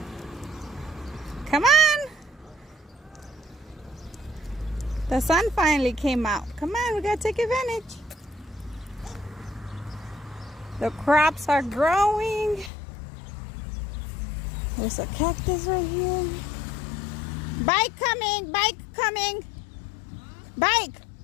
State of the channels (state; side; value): drops out; right; at 12.7 s